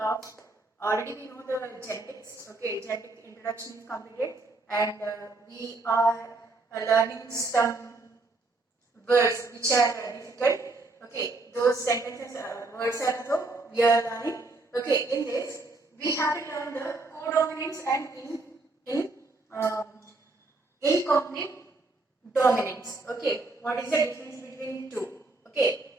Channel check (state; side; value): quieter; left; 3.2 dB